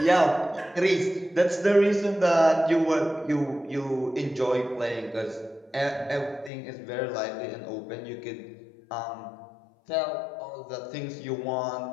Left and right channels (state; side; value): drops out; right; at 6.5 s